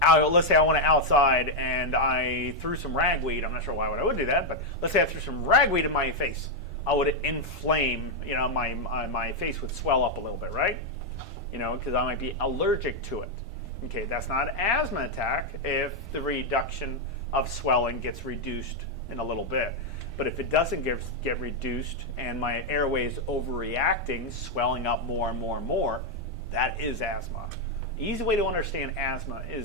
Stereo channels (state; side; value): normal; both; correlation 0.00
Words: let's say I went outside and I threw some ragweed. I'm not sure why I would do that, but let's say I threw some ragweed in my face. I would inflame, my face would swell up a little bit, right? Because I might be allergic to it. Okay, that's not an asthma attack if the reduction of swelling gets reduced in a little bit. But if it doesn't get reduced and my airway is overreacting, swelling up more and more and more, that is asthma. Easy way to understand asthma